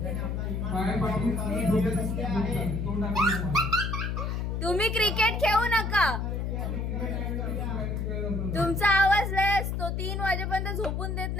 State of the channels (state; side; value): noise; left; hum, 1 dB below the sound